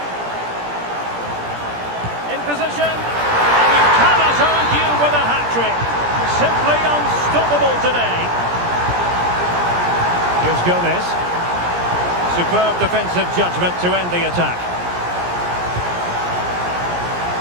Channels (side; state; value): left; late; 17 ms